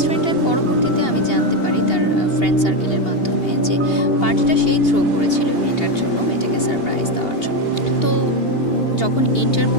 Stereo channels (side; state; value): right; late; 2.8 ms